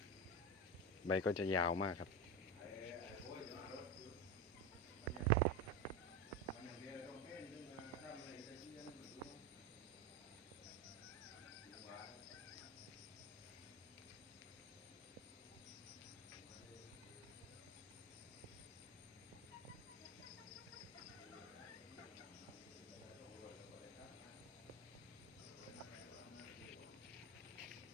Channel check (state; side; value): normal; both; correlation 0.19